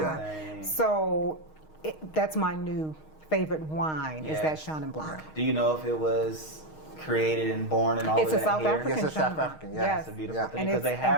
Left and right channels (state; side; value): late; right; 6.4 ms